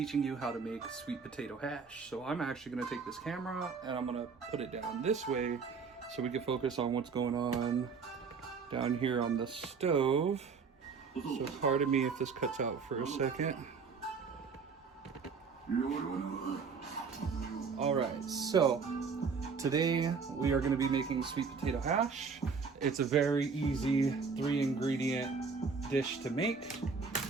you how to make sweet potato hash. So I'm actually going to take this camera and I'm going to put it down this way so we can focus on what's going on down here on the stove. So pardon me if this cuts out for a second. Alright, so today we are going to be making sweet potato hash. It's a very easy 3-ingredient dish to make.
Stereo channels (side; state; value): left; quieter; 5.3 dB